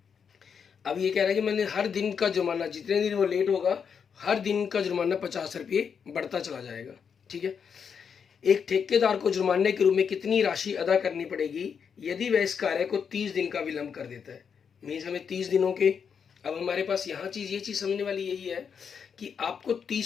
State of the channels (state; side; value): quieter; right; 6.8 dB